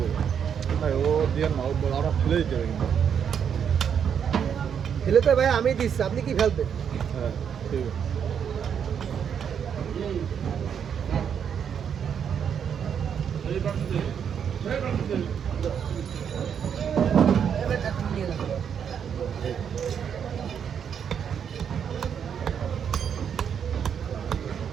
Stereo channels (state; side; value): quieter; left; 7.9 dB